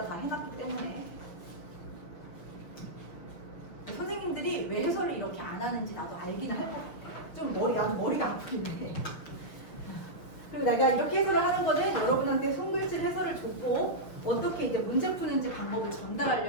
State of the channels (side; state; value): right; late; 6.4 ms